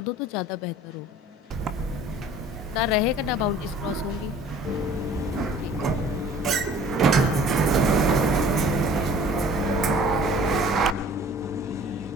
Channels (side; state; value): both; normal; correlation 0.50